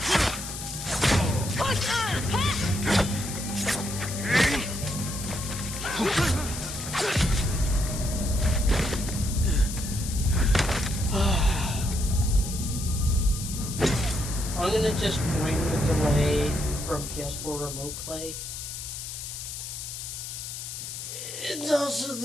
I'm gonna just bring the delay from PS4 Remote Play. It's also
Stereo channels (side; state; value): left; noise; hiss, 8 dB below the sound